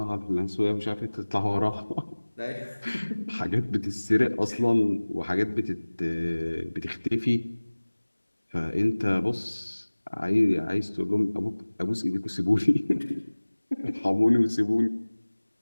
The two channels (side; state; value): both; inverted; correlation -1.00